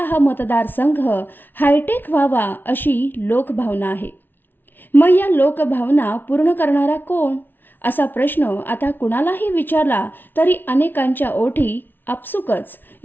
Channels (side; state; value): right; late; 0.096 ms